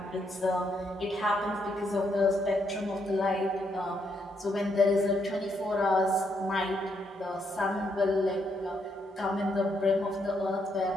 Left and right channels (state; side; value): normal; both; correlation 0.76